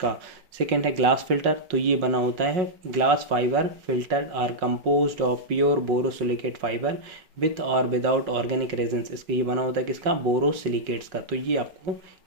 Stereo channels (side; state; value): left; late; 5.4 ms